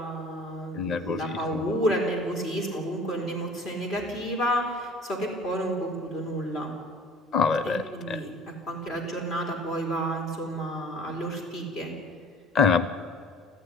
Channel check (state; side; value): normal; both; correlation 0.47